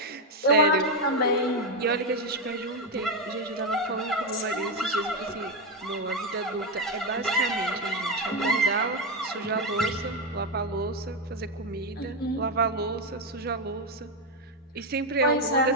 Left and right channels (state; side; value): normal; both; correlation 0.07